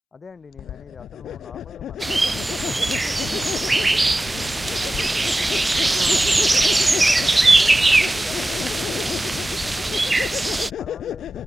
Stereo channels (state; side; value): normal; both; correlation 0.95